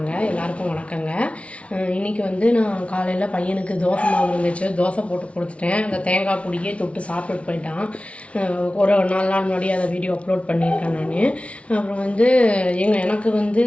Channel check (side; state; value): right; late; 0.062 ms